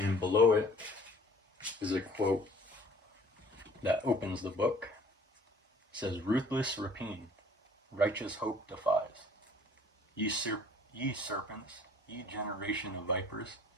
below it is a quote that opens the book. It says, "Ruthless rapine, righteous hope defies. Ye serpents, ye generation of vipers,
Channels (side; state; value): both; normal; correlation 0.54